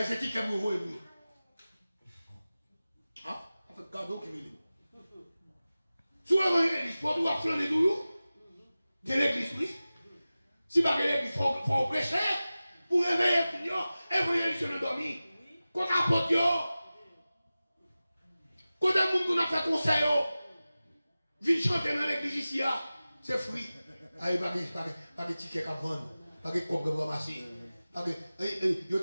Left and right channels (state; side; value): inverted; both; correlation -0.96